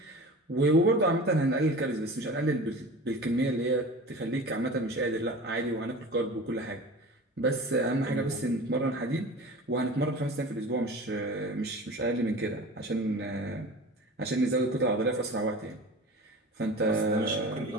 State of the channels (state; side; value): normal; both; correlation 0.37